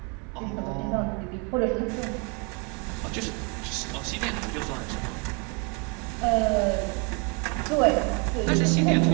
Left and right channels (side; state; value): left; quieter; 33.2 dB